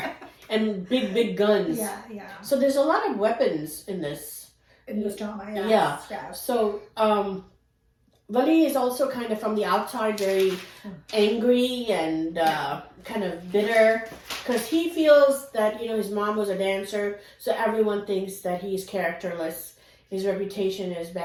and big guns. Yeah. So there's a lot of weapons in this. In this drama, yeah. So, Wali is also kind of from the outside very angry and kind of bitter because he feels that, his mom was a dancer, so everyone thinks that he's characterless. His reputation is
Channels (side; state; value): both; identical; correlation 1.00